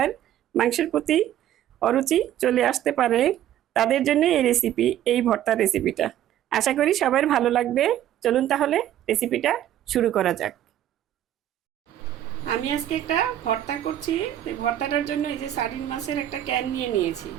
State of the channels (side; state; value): left; quieter; 11.8 dB